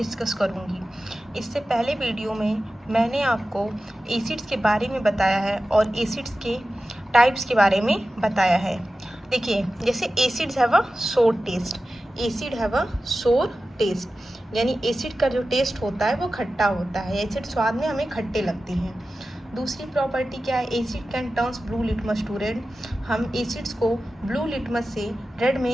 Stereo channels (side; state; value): both; normal; correlation 0.94